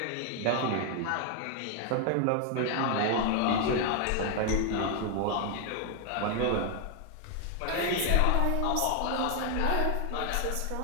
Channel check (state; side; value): different; both; correlation 0.00